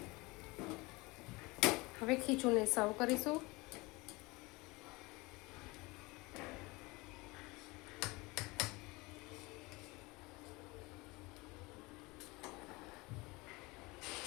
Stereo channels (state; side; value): quieter; right; 23.9 dB